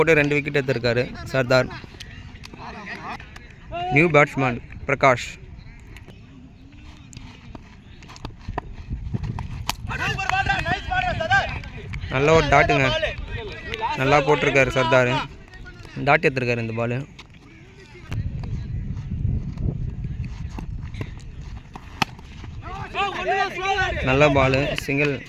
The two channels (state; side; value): identical; both; correlation 1.00